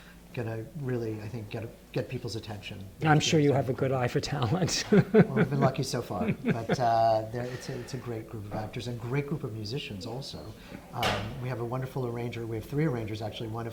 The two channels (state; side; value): identical; both; correlation 1.00